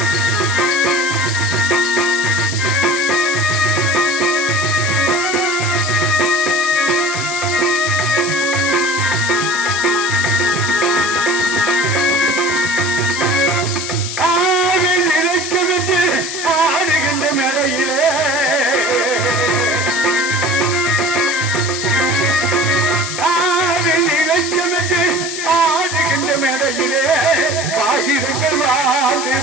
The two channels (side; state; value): left; noise; hiss, 6 dB below the sound